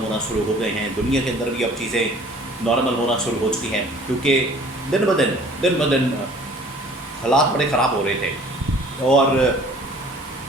ہونا شروع ہو گئے ہیں۔ دنیا کے اندر بھی اب چیزیں نارمل ہونا شروع ہو چکی ہیں، کیونکہ دن بدن حالات بڑے خراب ہو رہے تھے اور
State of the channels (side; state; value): both; normal; correlation 0.51